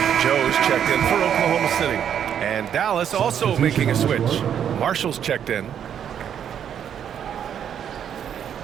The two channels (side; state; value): left; quieter; 8.9 dB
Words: Joe's checked in for Oklahoma City. And Dallas also making a switch. Marshall's checked in.